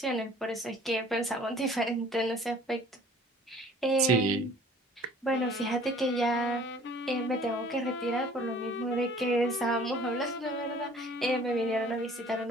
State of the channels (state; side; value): normal; both; correlation 0.51